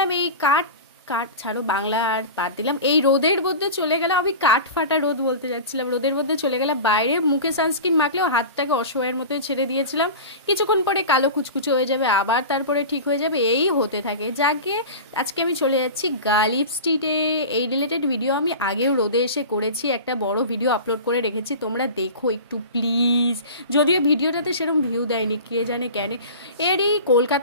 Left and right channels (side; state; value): both; inverted; correlation -0.32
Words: এই কাঠ কাঠ ছাড়ো, বাংলা আর বাদ দিলাম। এই রোদের মধ্যে চলে গেলাম, আমি কাঠ ফাটা রোদ বলতে যাচ্ছিলাম, রোদের মধ্যে চলে গেলাম বাইরে। মুখে সানস্ক্রিন মাখলেও হাতটাকে অসহায়ের মতোই ছেড়ে দিয়েছিলাম। কিছুক্ষণ পরে কালো কুচকুচো হয়ে যাবে, আবার তারপরে ঠিক হয়ে যাবে, এই হতে থাকে। যাকে আজকে আমি চলে যাচ্ছি গালিব স্ট্রিটে। এই রিলেটেড ভিডিও আমি আগেও রোদে এসে করেছি, একটা বড় ভিডিও আপলোড করে রেখেছি, তোমরা দেখো একটু প্লিজ। যদিও ভিডিওটাতে সেরকম ভিউ দেয়নি, কে জানে কেন। এরই